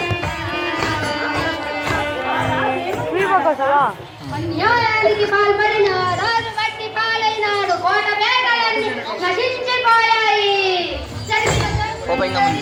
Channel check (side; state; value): both; identical; correlation 1.00